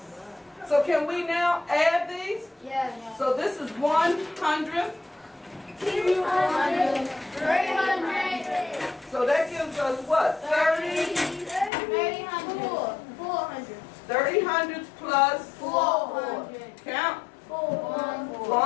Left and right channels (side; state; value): right; drops out; at 11.7 s